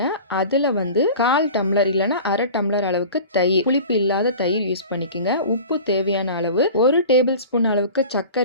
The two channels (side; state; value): both; inverted; correlation -0.39